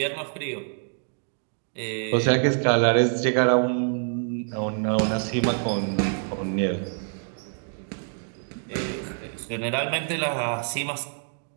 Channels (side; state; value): left; silent; digital silence